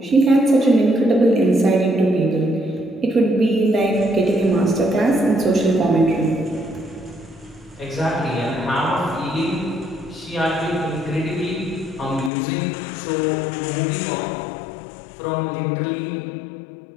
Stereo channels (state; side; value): drops out; right; at 12.3 s